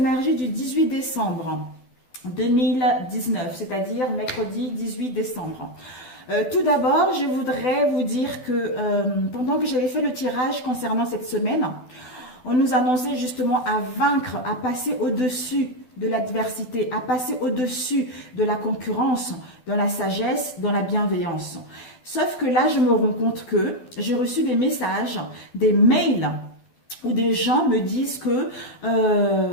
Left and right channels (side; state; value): right; late; 12 ms